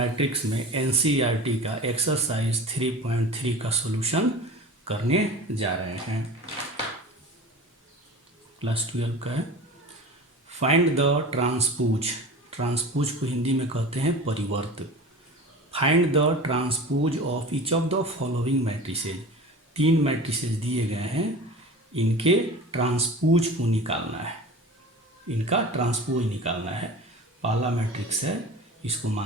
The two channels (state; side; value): normal; both; correlation 0.36